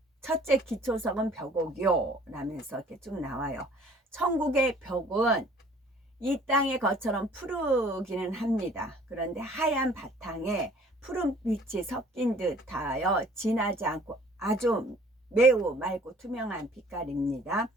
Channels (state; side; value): normal; both; correlation 0.54